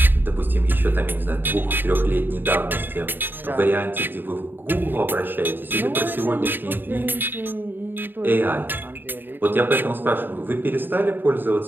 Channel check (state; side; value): late; left; 0.094 ms